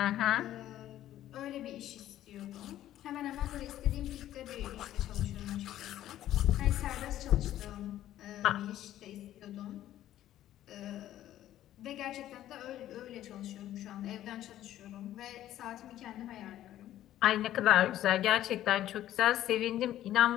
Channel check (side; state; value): right; quieter; 12.8 dB